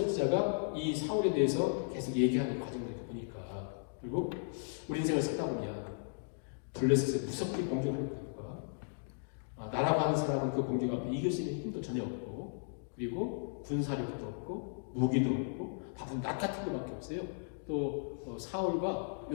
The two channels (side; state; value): right; silent; digital silence